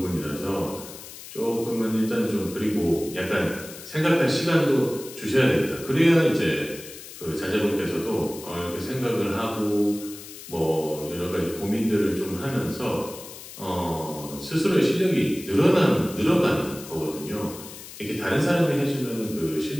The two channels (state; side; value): noise; left; hiss, 14 dB below the sound